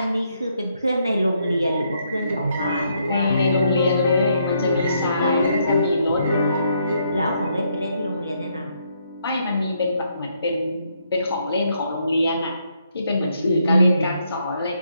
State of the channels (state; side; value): inverted; both; correlation -0.74